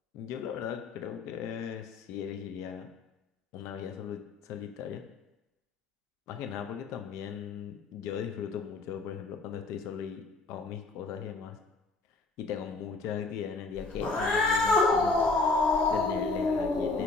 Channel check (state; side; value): quieter; right; 3.7 dB